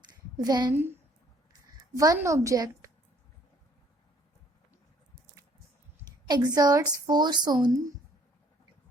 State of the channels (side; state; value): both; normal; correlation 0.62